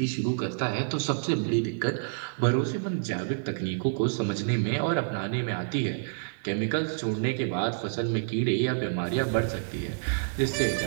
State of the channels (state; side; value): silent; left; digital silence